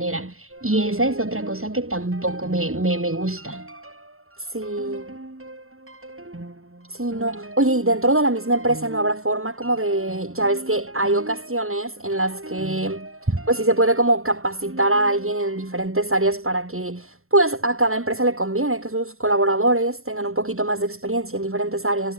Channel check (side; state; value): left; late; 0.62 ms